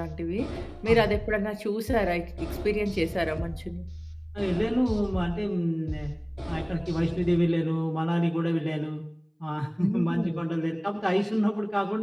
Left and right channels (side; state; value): both; identical; correlation 1.00